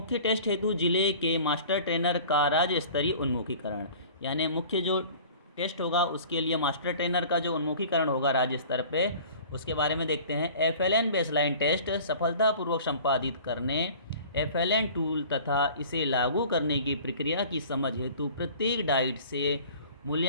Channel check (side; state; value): both; inverted; correlation -0.45